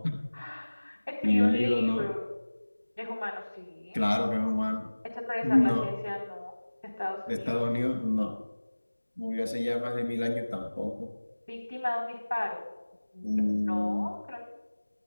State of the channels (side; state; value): both; inverted; correlation -1.00